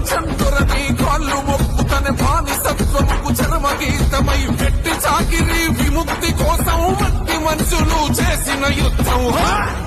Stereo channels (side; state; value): both; identical; correlation 1.00